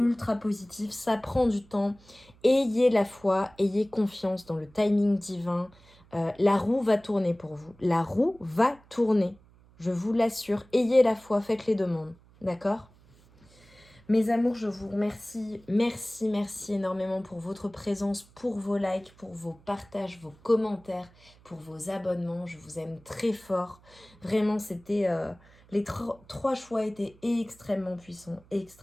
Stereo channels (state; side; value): noise; right; hum, 27 dB below the sound